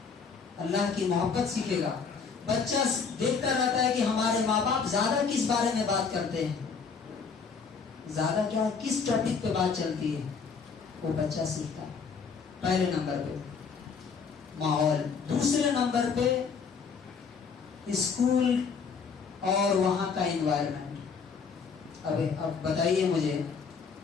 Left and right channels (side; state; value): right; quieter; 5.6 dB